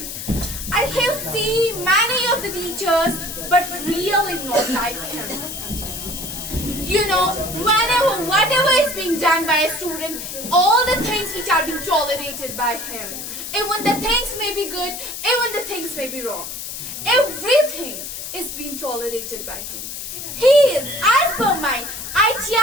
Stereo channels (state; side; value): noise; left; hiss, 8 dB below the sound